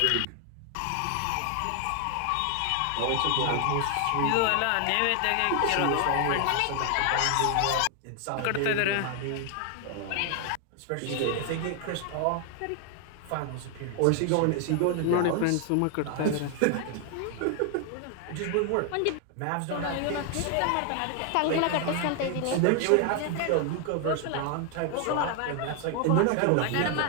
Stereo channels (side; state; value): both; different; correlation 0.00